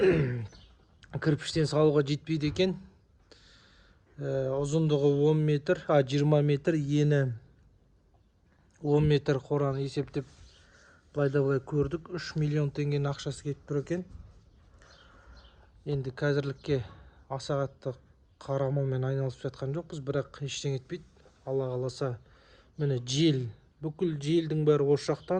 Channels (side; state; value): both; identical; correlation 1.00